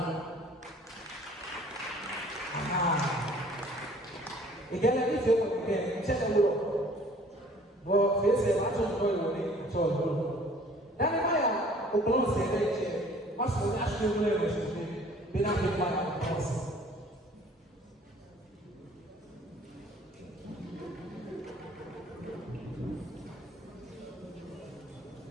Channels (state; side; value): normal; both; correlation 0.53